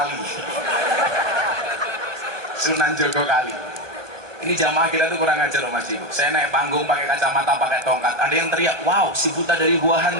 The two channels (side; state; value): left; late; 1.2 ms